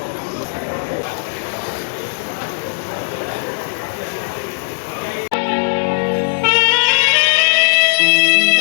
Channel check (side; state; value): right; silent; digital silence